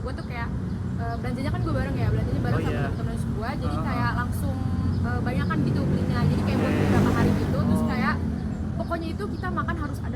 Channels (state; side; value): identical; both; correlation 1.00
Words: gue tuh kayak belanjanya kan gue bareng ya, belanjanya bareng sama temen-temen gue, jadi kayak langsung banyakan gitu belinya, jadi kayak buat beberapa hari gitu. Terus kayak pokoknya itu kita makan harus